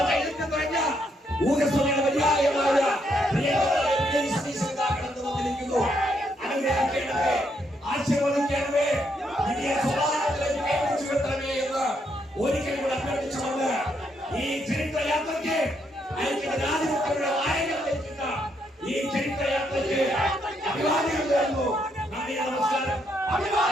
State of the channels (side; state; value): both; normal; correlation 0.75